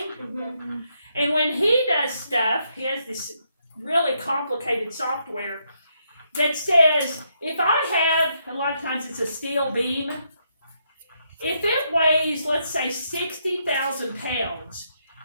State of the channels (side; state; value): both; inverted; correlation -0.77